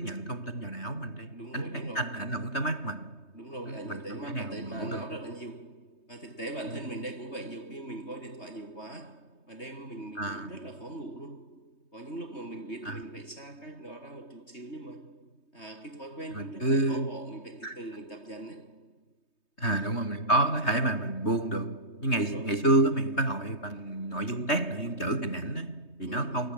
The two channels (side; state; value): right; late; 3.2 ms